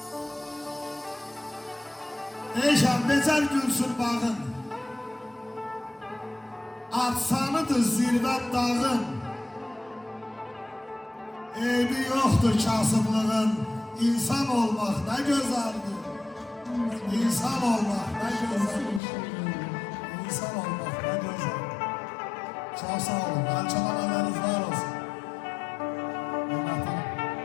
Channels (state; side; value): drops out; right; at 19.0 s